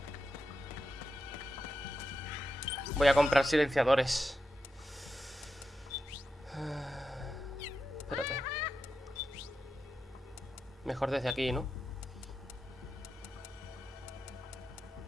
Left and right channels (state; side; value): normal; both; correlation 0.89